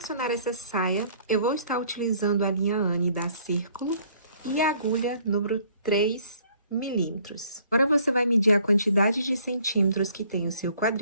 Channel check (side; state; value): both; inverted; correlation -0.60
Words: essa saia, eu vou estar utilizando a linha Anne da Círculo e a agulha número 3 milímetros. Agora você vai medir a quantidade de centímetros que tem o seu